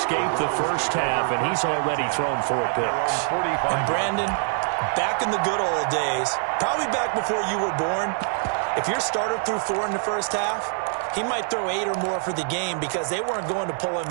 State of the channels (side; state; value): left; silent; 62 dB below the other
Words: the first half, and he's already thrown 4 picks. And Brandon, back in the good old days, probably back before you were born, if your starter threw 4 in the first half, he might throw 8 or more for the game because they weren't going to pull him